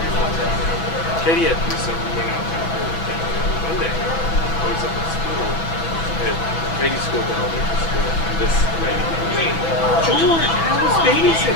longer, I don't know. Katie had to do something. We went out to Monday. I was up at school. At Katie's school, but elementary school, and this lady comes in. George, how was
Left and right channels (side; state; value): right; late; 6.1 ms